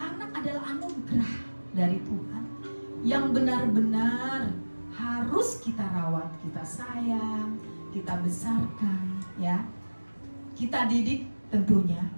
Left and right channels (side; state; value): both; inverted; correlation -1.00